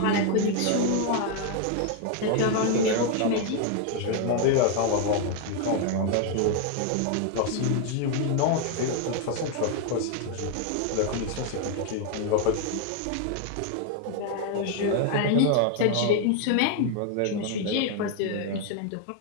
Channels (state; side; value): different; both; correlation 0.01